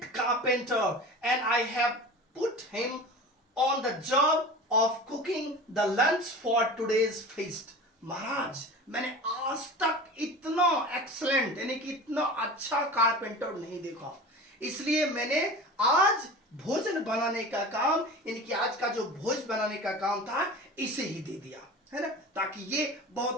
carpenter, and I have put him on the job of cooking the lunch for today's feast. महाराज, मैंने आज तक इतना एक्सलेंट यानी कि इतना अच्छा कारपेंटर नहीं देखा, इसलिए मैंने आज भोजन बनाने का काम, यानी कि आज का जो भोज बनाने का काम था, इसे ही दे दिया, है ना, ताकि ये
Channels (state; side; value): normal; both; correlation 0.35